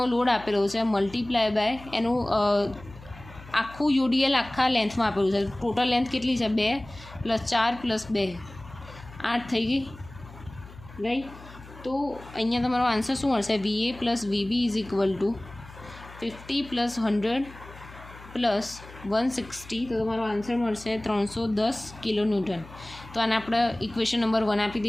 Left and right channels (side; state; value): left; noise; hum, 18 dB below the sound